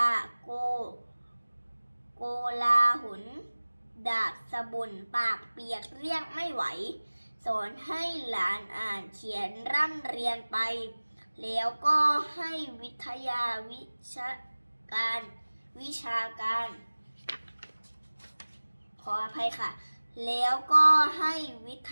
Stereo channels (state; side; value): inverted; both; correlation -1.00